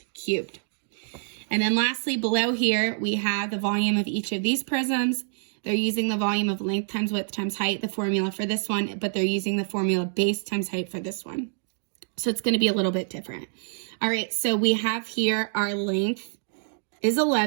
cubed. And then lastly, below here, we have the volume of each of these prisms. They're using the volume of length times width times height, the formula for this one, but they're using the formula base times height for this one. So it's going to be a little bit different. All right, so we have here our length is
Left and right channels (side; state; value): left; silent; 61 dB below the other